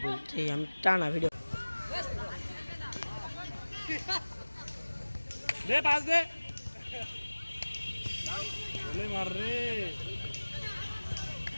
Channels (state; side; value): inverted; both; correlation -1.00